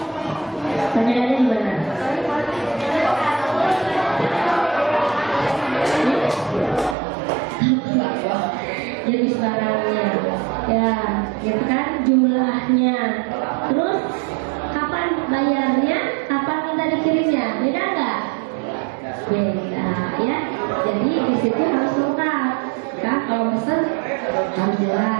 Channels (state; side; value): drops out; left; at 7.0 s